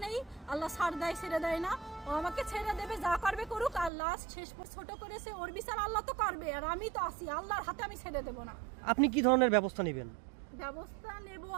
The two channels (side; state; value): left; drops out; at 3.9 s